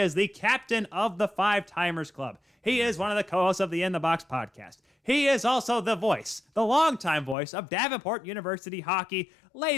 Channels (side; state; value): right; drops out; at 7.4 s